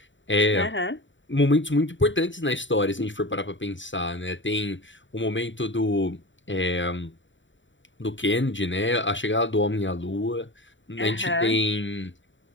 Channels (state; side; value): late; right; 0.55 ms